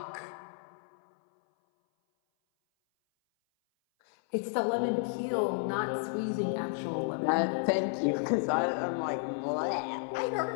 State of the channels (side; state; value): right; silent; 56 dB below the other